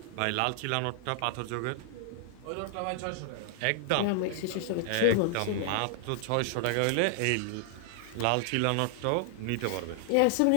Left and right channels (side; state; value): both; different; correlation 0.00